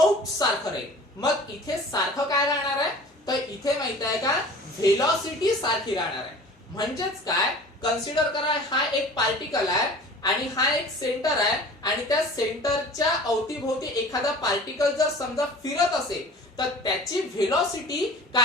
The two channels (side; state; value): both; normal; correlation 0.43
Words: सारखं राहील. मग इथे सारखं काय राहणार आहे? तर इथे माहित आहे का व्हेलॉसिटी सारखी राहणार आहे. म्हणजेच काय? कन्सिडर करा हा एक पार्टिकल आहे आणि हा एक सेंटर आहे आणि त्या सेंटरच्या अवतीभोवती एखादा पार्टिकल जर समजा फिरत असेल तर त्याची व्हेलॉसिटी